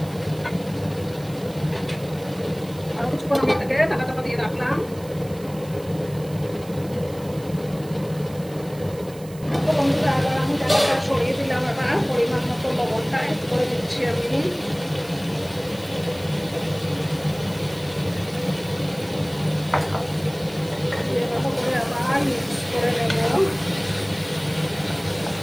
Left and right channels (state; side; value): noise; right; hiss, 20 dB below the sound